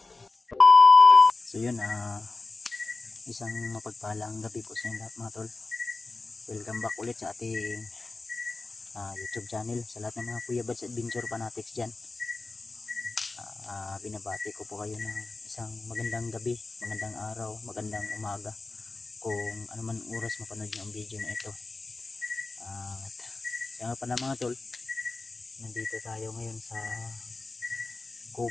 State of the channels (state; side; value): quieter; right; 3.5 dB